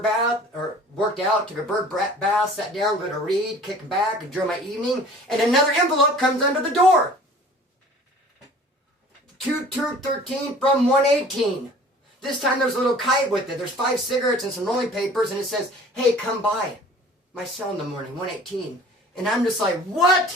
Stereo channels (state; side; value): normal; both; correlation 0.47